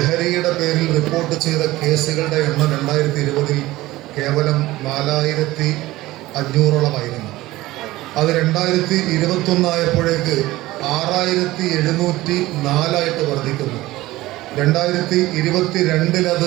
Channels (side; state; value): left; quieter; 17.7 dB